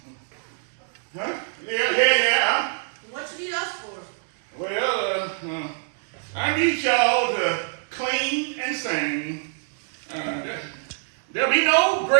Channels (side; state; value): left; silent; digital silence